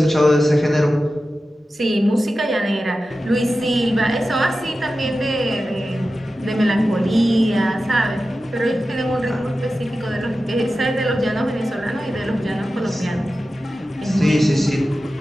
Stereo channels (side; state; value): both; normal; correlation 0.93